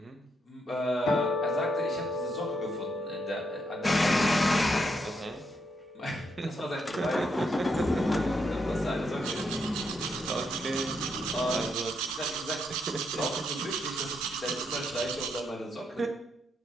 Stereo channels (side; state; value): both; normal; correlation 0.78